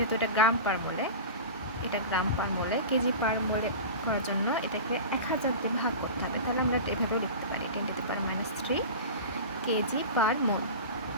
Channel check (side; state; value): both; inverted; correlation -0.31